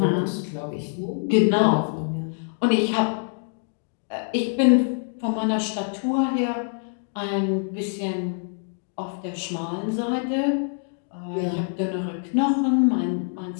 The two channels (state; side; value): silent; right; 62 dB below the other